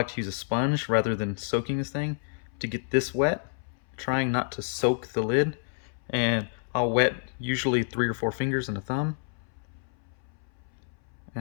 to use a sponge rather than soaking this thing to get this wet, trying not to soak the lid. And I'll wet usually 3 or 4 fingers and a thumb,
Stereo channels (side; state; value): right; silent; 59 dB below the other